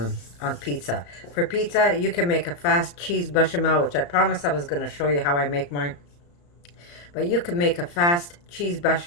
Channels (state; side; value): late; right; 34 ms